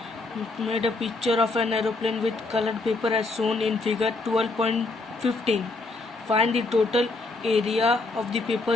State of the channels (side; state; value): right; quieter; 3.3 dB